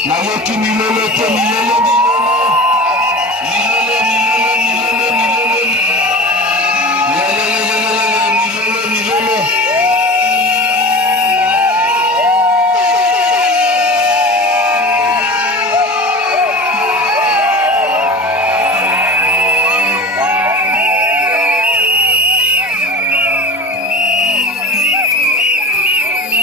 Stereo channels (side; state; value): both; normal; correlation 0.33